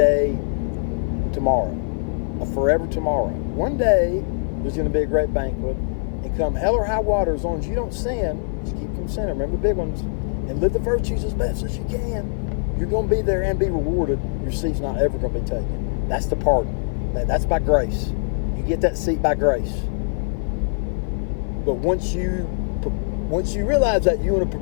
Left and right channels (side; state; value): right; silent; 57 dB below the other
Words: tomorrow. Forever tomorrow. One day, there's going to be a great banquet. And come hell or high water, as long as you don't sin, just keep from sinning. Remember the big ones. And live the virtues as best as you can. You're going to be there and be rewarded. Your seat's not ever going to be taken. That's the pardon. That's by grace. You get that seat by grace. But once you realize that, you want to